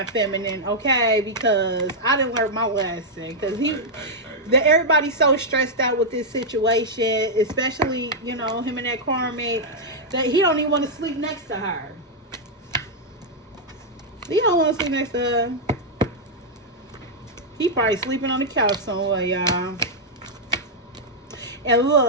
Feminine, okay? Because I didn't learn my lesson. Because everybody's so stressed out with this situation, especially, you know, him and that Karmic, that he don't even want to sleep next to her. He don't want to sleep next to her. He probably sleeping on the couch somewhere, y'all. And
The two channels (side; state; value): both; normal; correlation -0.05